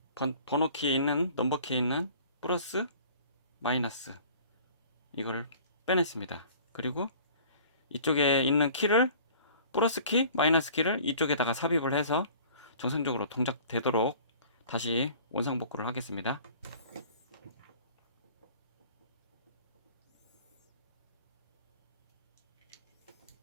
번호 키에 있는 넘버 키에 있는 플러스 마이너스 이거를 빼냈습니다. 그리고 이쪽에 있는 키를 플러스 키, 마이너스 키를 이쪽에다가 삽입을 해서 정상적으로 동작되도록 다시 원상복구를 하겠습니다.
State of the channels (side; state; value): both; inverted; correlation -0.48